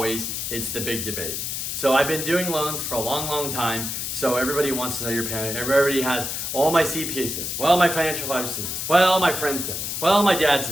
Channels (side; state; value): left; noise; hiss, 3 dB below the sound